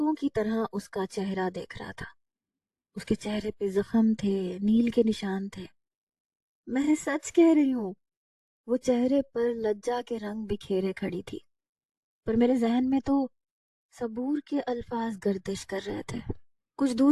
کی طرح اس کا چہرہ دیکھ رہا تھا۔ اس کے چہرے پہ زخم تھے، نیل کے نشان تھے۔ میں سچ کہہ رہی ہوں، وہ چہرے پر لجا کے رنگ بکھیرے کھڑی تھی، پر میرے ذہن میں تو صبور کے الفاظ گردش کر رہے تھے۔ کچھ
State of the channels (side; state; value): both; identical; correlation 1.00